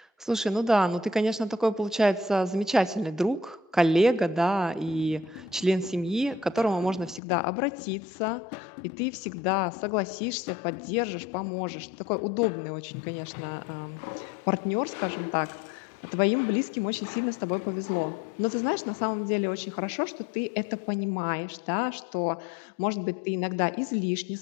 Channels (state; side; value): drops out; right; at 7.2 s